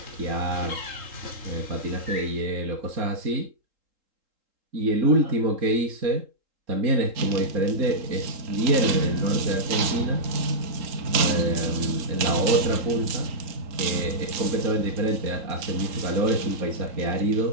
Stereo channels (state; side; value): late; left; 3.7 ms